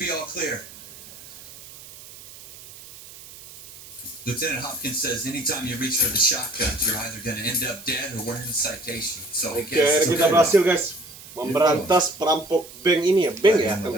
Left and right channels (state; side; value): noise; right; hiss, 18 dB below the sound